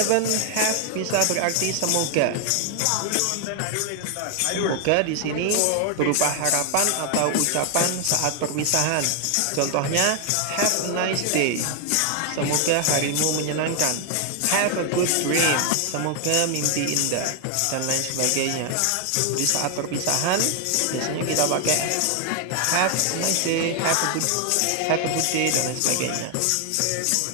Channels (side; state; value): both; different; correlation 0.00